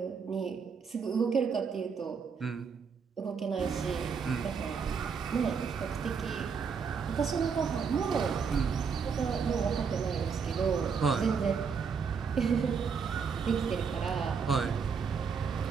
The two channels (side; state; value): left; quieter; 6.0 dB